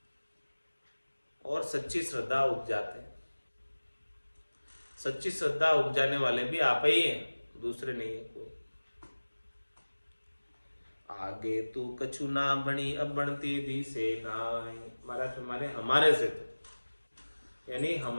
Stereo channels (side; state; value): both; inverted; correlation -1.00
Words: और सच्ची श्रद्धा उपजाते हैं। सच्ची श्रद्धा उपजाने वाले भी आप ही हैं, दूसरे नहीं है कोई। आगे तू कछु ना बनी अब बनती दी से नाय। महाराज हमारे से तो, यानी